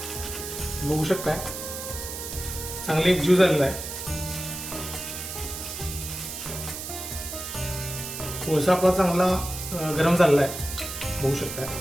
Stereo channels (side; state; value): right; noise; hiss, 7 dB below the sound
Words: बघू शकताय चांगली एकजीव झालेला आहे. कोळसा आपला चांगला गरम झालेला आहे, बघू शकताय.